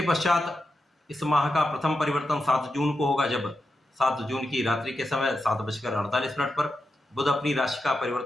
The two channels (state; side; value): normal; both; correlation 0.88